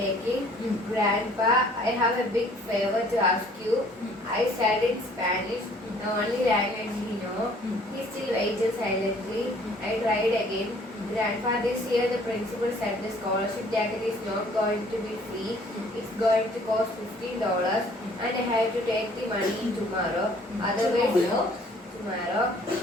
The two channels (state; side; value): normal; both; correlation 0.57